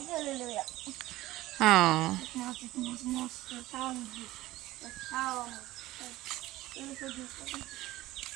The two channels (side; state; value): left; quieter; 17.2 dB